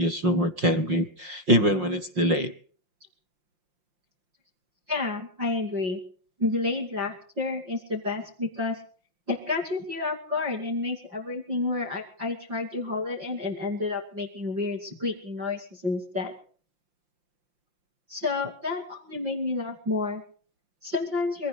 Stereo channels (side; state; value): left; late; 5.7 ms